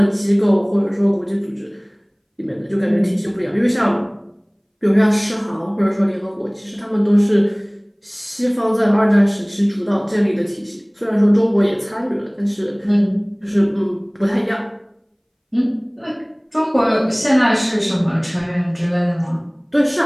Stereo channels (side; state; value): both; identical; correlation 1.00